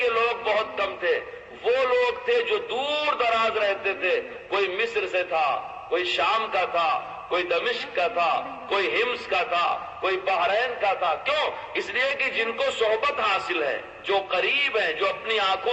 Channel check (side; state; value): both; identical; correlation 1.00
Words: لوگ بہت کم تھے، وہ لوگ تھے جو دور دراز رہتے تھے، کوئی مصر سے تھا، کوئی شام کا تھا، کوئی دمشق کا تھا، کوئی ہمس کا تھا، کوئی بحرین کا تھا۔ کیوں؟ اس لیے کہ جن کو صحبت حاصل ہے، جو قریب ہیں، جو اپنی